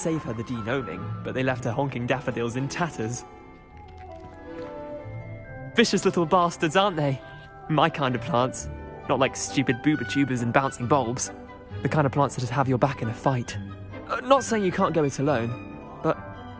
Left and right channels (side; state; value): both; identical; correlation 1.00